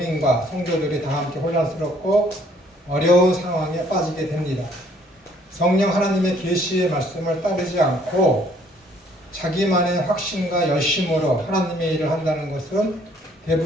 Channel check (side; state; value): both; normal; correlation 0.62